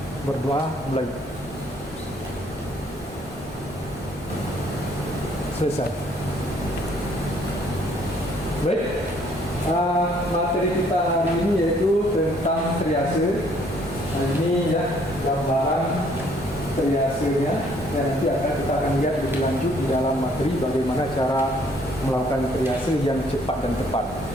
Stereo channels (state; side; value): normal; both; correlation 0.63